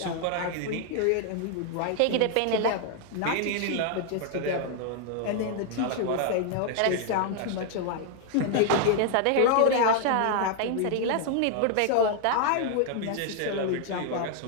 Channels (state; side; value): different; both; correlation 0.00